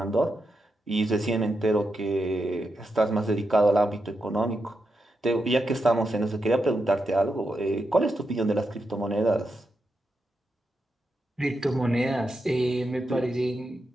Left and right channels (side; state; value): both; normal; correlation 0.86